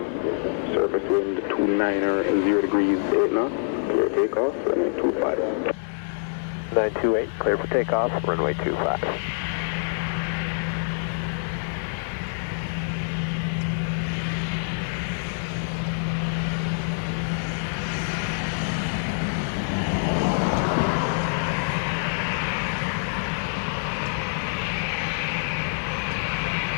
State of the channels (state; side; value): silent; right; digital silence